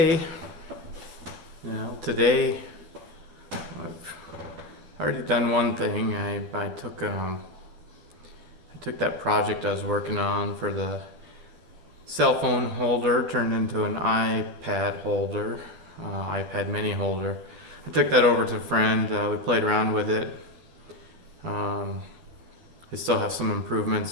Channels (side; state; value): left; late; 12 ms